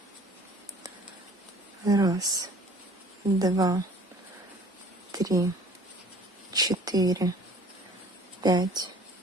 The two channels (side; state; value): both; normal; correlation 0.51